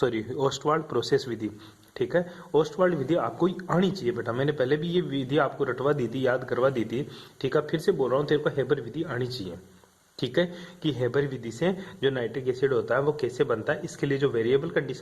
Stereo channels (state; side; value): identical; both; correlation 1.00